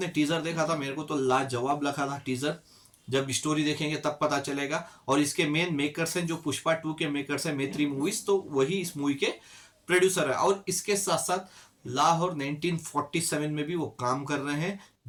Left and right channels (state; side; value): identical; both; correlation 1.00